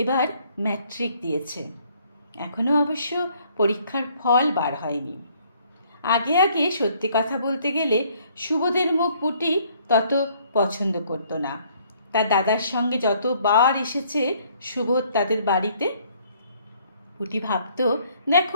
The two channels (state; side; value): inverted; both; correlation -0.63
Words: ম্যাট্রিক দিয়েছে। এখনও অবশ্য পরীক্ষার ফল বার হয়নি। আগে আগে সত্যি কথা বলতে গেলে সুবোধের মুখ পুটি তত পছন্দ করতো না। তার দাদার সঙ্গে যতবার এসেছে সুবোধ তাদের বাড়িতে, পুটি ভাবতো,